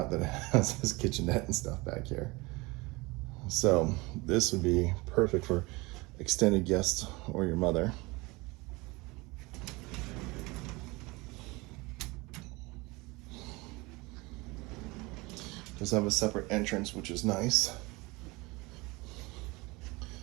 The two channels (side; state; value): left; quieter; 23.9 dB